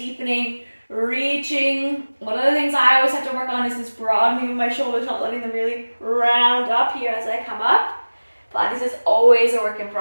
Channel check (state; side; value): inverted; both; correlation -1.00